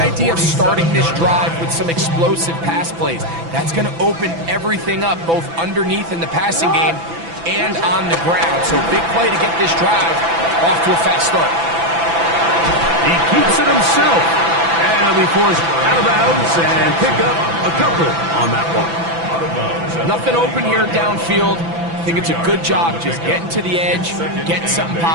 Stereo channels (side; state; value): left; late; 6.0 ms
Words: of starting this drive with some explosive pass plays. That's going to open everything up, both underneath in the passing game and on the ground. So big play to get this drive off to a fast start. He keeps it himself. And he'll be forced out of bounds and pick up a couple on that one. Nothing open here downfield. I think it's a good job just getting to the edge, getting something